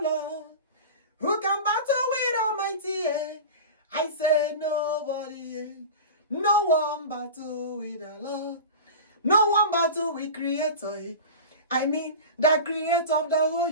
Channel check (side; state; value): both; inverted; correlation -0.31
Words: Lord? Who can battle with Almighty? I say nobody. No one battle with the Lord. No one battle with Creator. I mean, the Creator of the whole